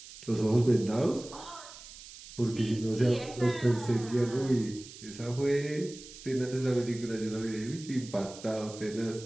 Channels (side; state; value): right; noise; hiss, 16 dB below the sound